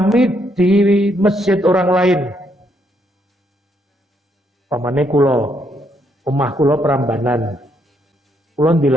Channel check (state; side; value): normal; both; correlation 0.74